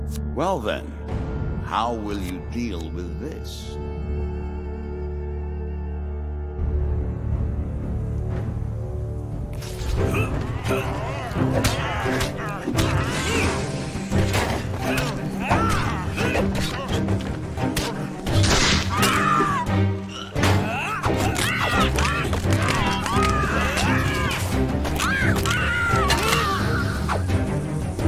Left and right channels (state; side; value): identical; both; correlation 1.00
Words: Well then, how will you deal with this?